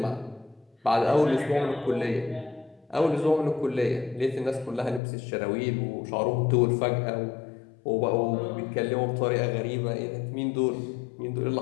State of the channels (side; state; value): right; drops out; at 5.0 s